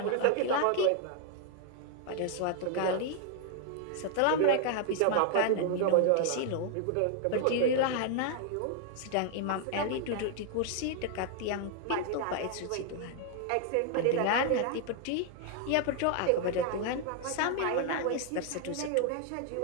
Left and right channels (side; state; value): both; different; correlation 0.00